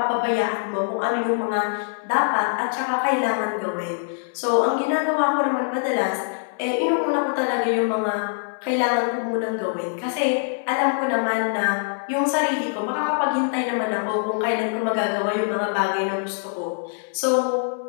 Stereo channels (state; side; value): silent; right; 63 dB below the other